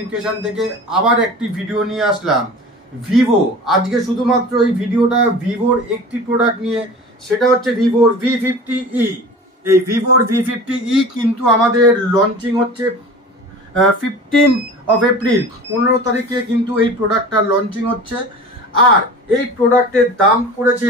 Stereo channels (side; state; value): both; normal; correlation 0.38